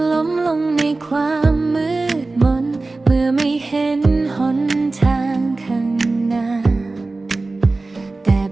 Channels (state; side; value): quieter; left; 3.3 dB